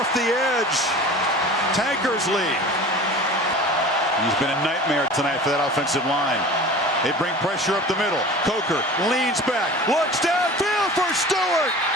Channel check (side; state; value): both; normal; correlation 0.39